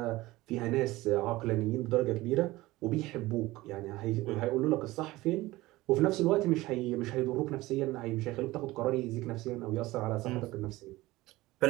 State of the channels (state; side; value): quieter; left; 19.0 dB